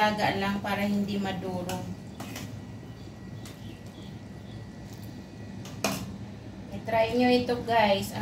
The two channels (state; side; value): identical; both; correlation 1.00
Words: lang para hindi madurog. I-try nyo ito, guys.